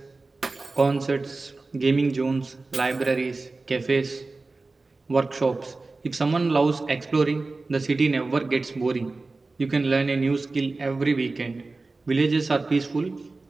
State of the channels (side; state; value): left; quieter; 3.5 dB